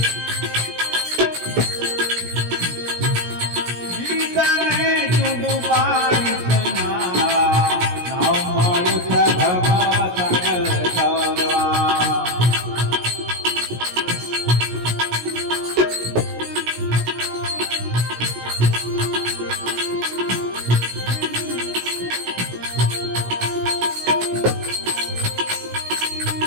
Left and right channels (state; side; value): late; left; 17 ms